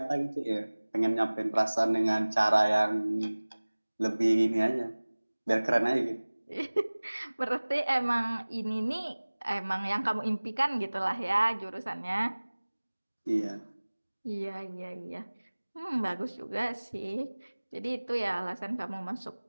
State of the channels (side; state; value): both; inverted; correlation -1.00